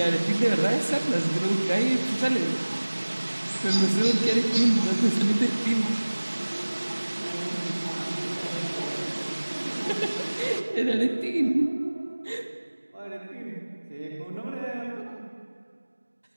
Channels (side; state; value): both; inverted; correlation -1.00